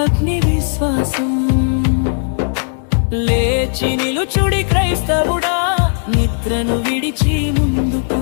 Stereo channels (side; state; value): right; silent; digital silence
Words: అగ్ని విశ్వాసం లేచి నిలుచుడి క్రైస్తవుడా నిద్రను విడిచి